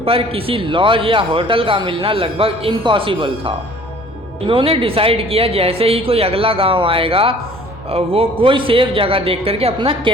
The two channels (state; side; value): normal; both; correlation 0.51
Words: पर किसी लॉज या होटल का मिलना लगभग इम्पॉसिबल था। इन्होंने डिसाइड किया जैसे ही कोई अगला गांव आएगा वो कोई सेफ जगह देख करके अपना